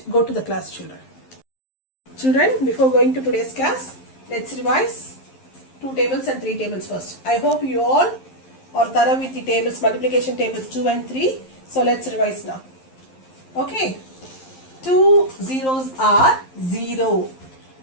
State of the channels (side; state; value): right; late; 11 ms